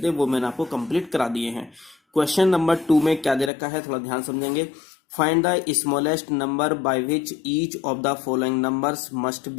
वो मैंने आपको कंप्लीट करा दिए हैं। क्वेश्चन नंबर 2 में क्या दे रखा है, थोड़ा ध्यान समझेंगे। Find the smallest number by which each of the following numbers must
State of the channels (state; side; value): drops out; right; at 3.5 s